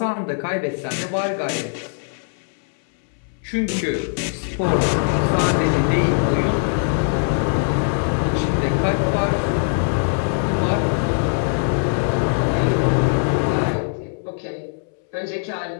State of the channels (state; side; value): silent; right; 63 dB below the other